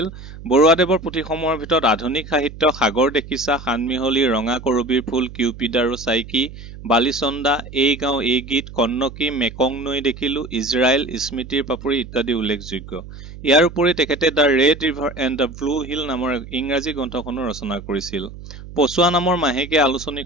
বৰুৱাদেৱৰ পুথিসমূহৰ ভিতৰত আধুনিক সাহিত্য, সাগৰ দেখিছা, সানমিহলি, ৰঙা কৰবীৰ ফুল, কিউপিড আৰু চাইকি, বালিচন্দা, এই গাঁও এই গীত, কন্নকী, মেকং নৈ দেখিলো, ইজৰাইল, স্মৃতিৰ পাপৰি ইত্যাদি উল্লেখযোগ্য। ইয়াৰ উপৰি তেখেতে the red river and the blue hill নামৰ ইংৰাজী গ্ৰন্থখনো ৰচনা কৰিছিল। পছোৱা নামৰ মাহেকীয়া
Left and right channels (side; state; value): right; noise; hum, 14 dB below the sound